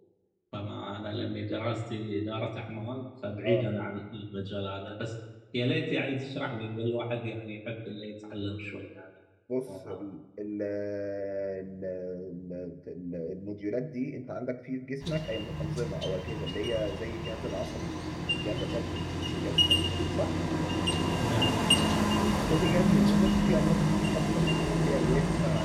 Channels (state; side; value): identical; both; correlation 1.00